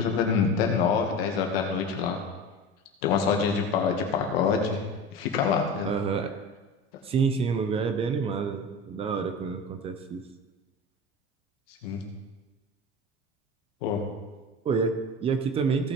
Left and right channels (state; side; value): normal; both; correlation 0.31